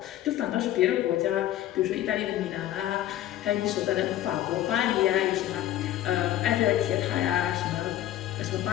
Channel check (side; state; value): right; quieter; 13.1 dB